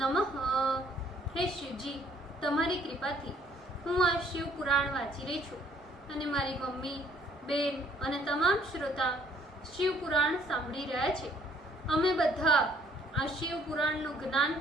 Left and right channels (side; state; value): both; normal; correlation 0.62